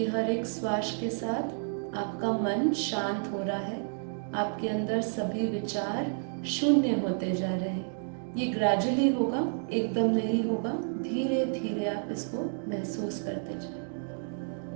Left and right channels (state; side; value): silent; left; digital silence